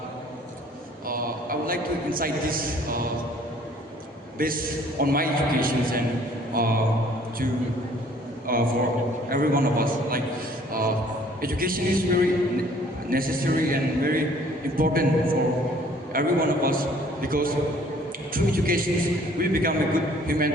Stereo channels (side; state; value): both; normal; correlation 0.57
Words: would like to incite this based on my educations and for every one of us. Like education is very necessary and very important for every one of us, because through education we become a good